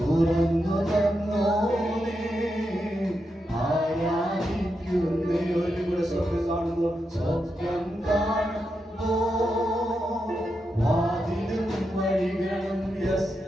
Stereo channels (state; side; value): normal; both; correlation 0.86